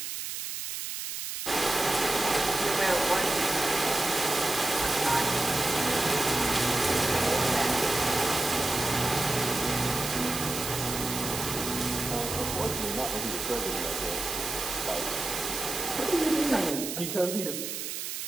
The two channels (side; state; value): right; noise; hiss, 5 dB below the sound